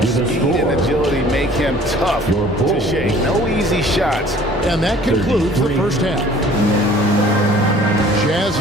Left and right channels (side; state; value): both; normal; correlation 0.51